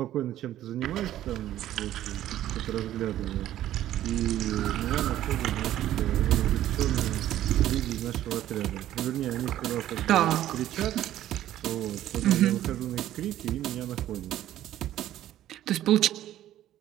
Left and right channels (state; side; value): quieter; left; 12.9 dB